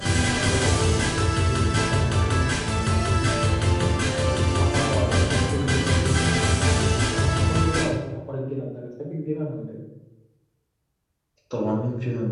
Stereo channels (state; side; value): identical; both; correlation 1.00